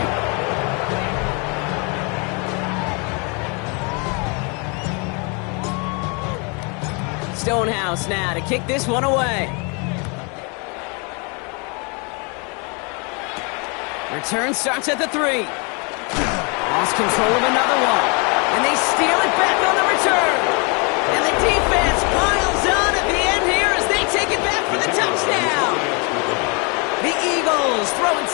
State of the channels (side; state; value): right; quieter; 33.0 dB